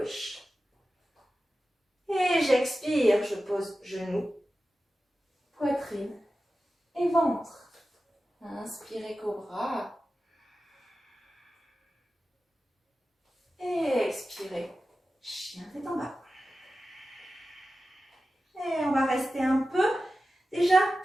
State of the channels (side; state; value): both; normal; correlation 0.94